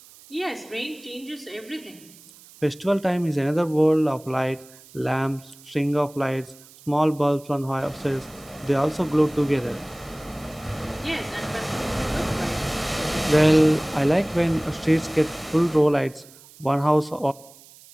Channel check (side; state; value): right; noise; hiss, 23 dB below the sound